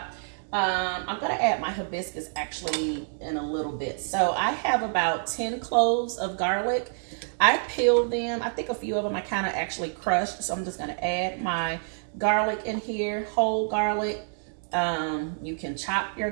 I'm gonna add my hibiscus actually in a little bit. So I have about 10 cloves of garlic. I peeled them. I think a few of them I kind of actually crushed. So I'm just gonna add my garlic in here, whole garlic. You can chop your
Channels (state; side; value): silent; left; digital silence